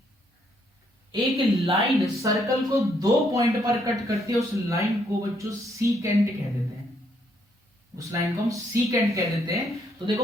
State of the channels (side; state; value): both; normal; correlation 0.72